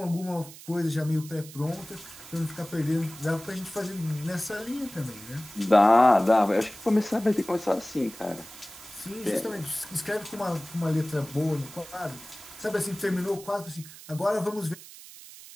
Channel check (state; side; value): noise; right; hiss, 17 dB below the sound